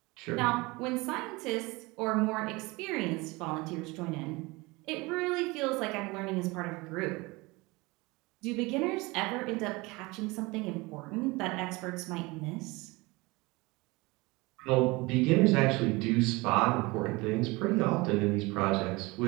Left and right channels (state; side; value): quieter; left; 23.8 dB